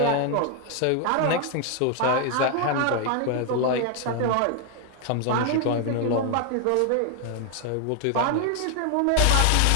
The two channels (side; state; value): both; different; correlation 0.00